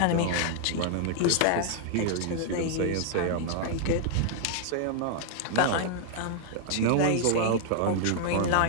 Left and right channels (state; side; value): different; both; correlation 0.00